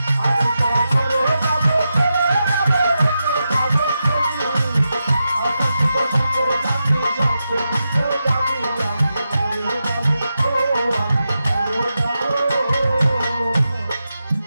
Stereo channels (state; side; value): inverted; both; correlation -0.89